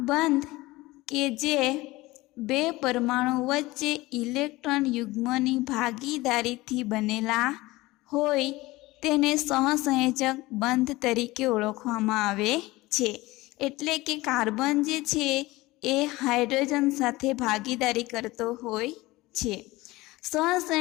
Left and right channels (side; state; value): right; quieter; 19.9 dB